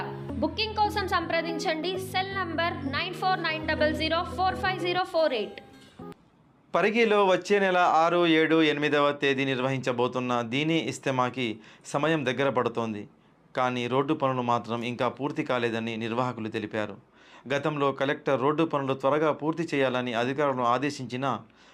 బుకింగ్ కోసం సంప్రదించండి. Cell number 9490045048. పరిగిలో వచ్చే నెల 6, 7, 8వ తేదీ నిర్వహించబోతున్న దీనీ ఇస్తమాకి సమయం దగ్గర పడుతోంది. కానీ రోడ్డు పనులు మాత్రం ఇంకా పూర్తి కాలేదని నిర్వాహకులు తెలిపారు. గతంలో కలెక్టర్ రోడ్డు పనులు త్వరగా పూర్తి చేయాలని అధికారులను ఆదేశించినా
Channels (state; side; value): identical; both; correlation 1.00